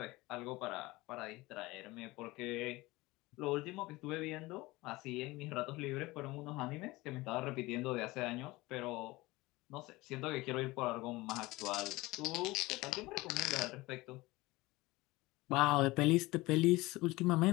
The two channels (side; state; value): right; quieter; 20.6 dB